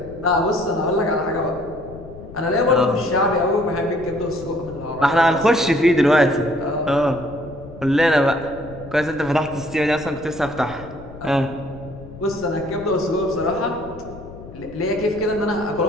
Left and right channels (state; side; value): noise; left; rumble, 16 dB below the sound